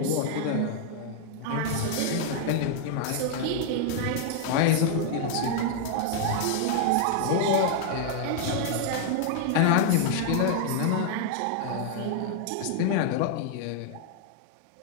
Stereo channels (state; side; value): different; both; correlation -0.01